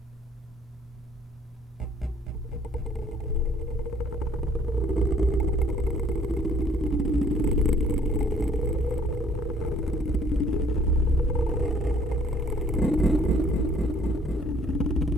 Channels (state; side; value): normal; both; correlation 0.60